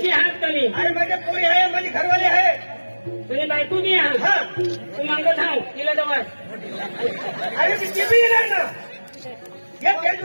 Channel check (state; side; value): inverted; both; correlation -1.00